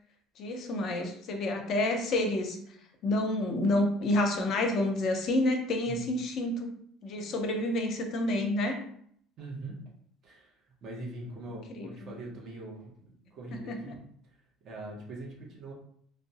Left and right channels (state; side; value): normal; both; correlation 0.54